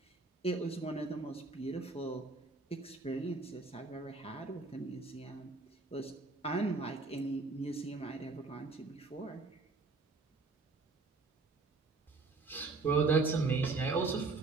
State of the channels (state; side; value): quieter; left; 3.8 dB